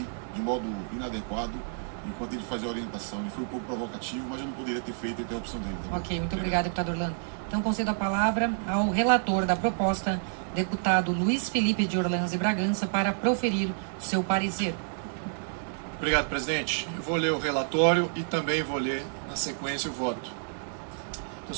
de modo inadequado enquanto ele fazia a orientação. Ele foi um pouco provocativo, mas eu não poderia ter feito a interrupção dele. Tá? Ok, muito obrigado, deputado Orlando. Então, concedo a palavra ao relator da proposta, deputado Luiz Felipe de Orleans e Bragança, para proferir o seu parecer. Obrigado, presidente. Eu vou ler o relatório e também vou ler, na sequência, o voto. Então,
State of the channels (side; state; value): left; silent; 58 dB below the other